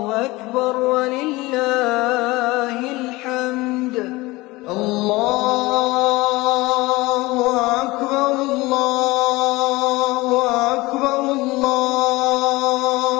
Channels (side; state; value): right; quieter; 21.2 dB